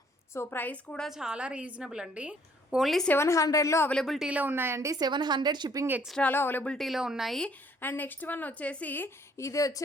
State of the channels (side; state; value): both; normal; correlation 0.62